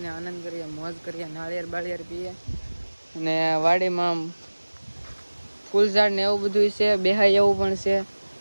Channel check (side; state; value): both; inverted; correlation -1.00